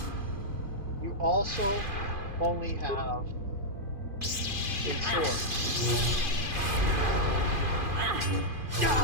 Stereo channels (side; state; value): left; late; 2.5 ms